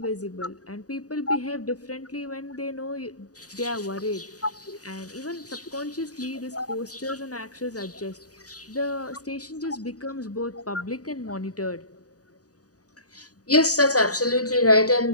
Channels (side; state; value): right; late; 0.67 ms